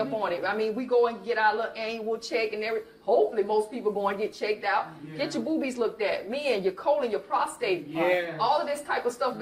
on it. We go and get our little annual check and everything. Hopefully, most people go and get checked out. Yeah. Get your boobies looked at. Men, your colon, your prostate. All of this type of stuff,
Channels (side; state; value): both; identical; correlation 1.00